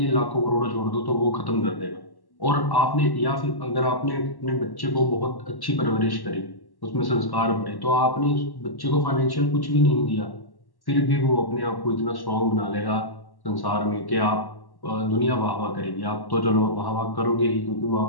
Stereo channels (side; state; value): right; late; 1.1 ms